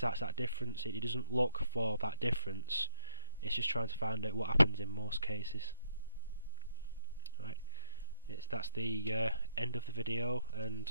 difference. It doesn't look for that difference. It's just trying to find out what happens in most cases. Right. That's the end of the video, and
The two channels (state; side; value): inverted; both; correlation -0.91